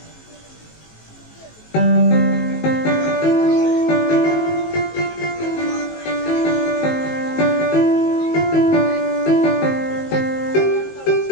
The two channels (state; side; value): late; right; 19 ms